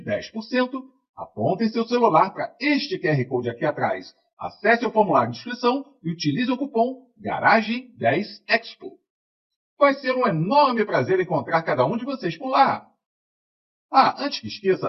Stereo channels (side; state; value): both; identical; correlation 1.00